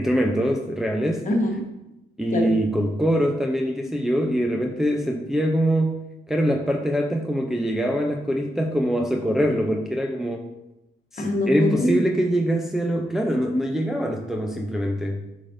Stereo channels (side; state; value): both; normal; correlation 0.86